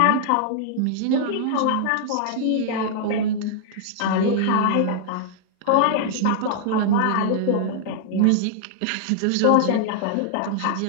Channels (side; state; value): both; different; correlation -0.01